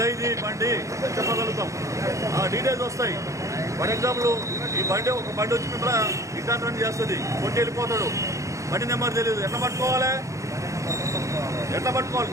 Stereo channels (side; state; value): left; late; 0.15 ms